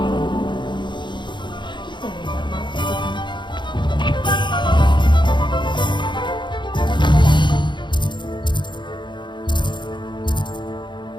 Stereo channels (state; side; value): late; right; 0.22 ms